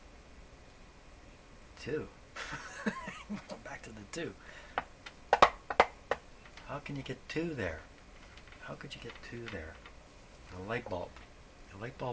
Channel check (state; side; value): identical; both; correlation 1.00